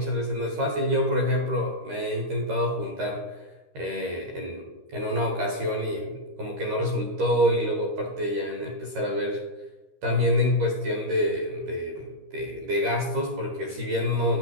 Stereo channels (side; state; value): left; late; 13 ms